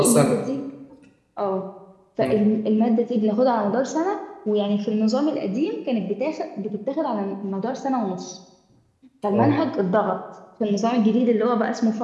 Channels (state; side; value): identical; both; correlation 1.00